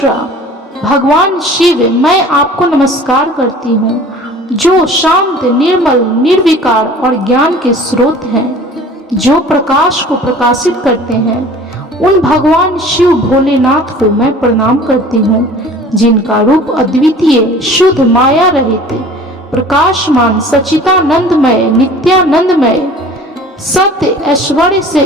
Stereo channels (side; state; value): both; normal; correlation 0.46